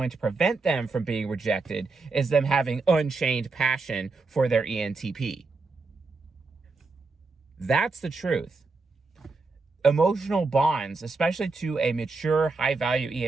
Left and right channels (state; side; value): quieter; left; 3.9 dB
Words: to prevent them from being rejected is them having unchained passion for their ENTP. That's the truth. Emotional bonds, especially to a mature, high-value